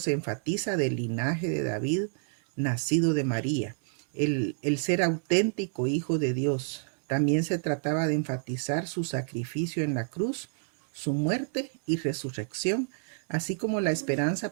enfatiza del linaje de David, nacido de María, el ser auténtico hijo de Dios. También se trataba de enfatizar su sacrificio en la cruz, su muerte y resurrección, así como la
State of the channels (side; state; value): left; silent; 59 dB below the other